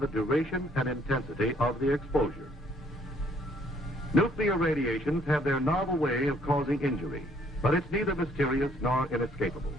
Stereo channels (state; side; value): normal; both; correlation 0.64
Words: duration and intensity of the exposure. Nuclear radiations have their novel way of causing injury, but it's neither mysterious nor inescapable.